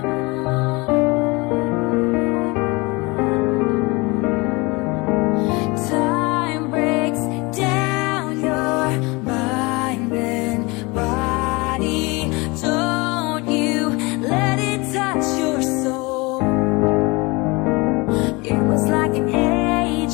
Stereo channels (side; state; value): right; quieter; 25.5 dB